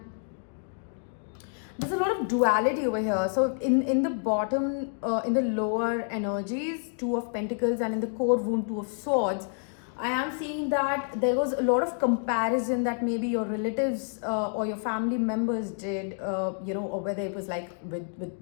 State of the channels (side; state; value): right; silent; 59 dB below the other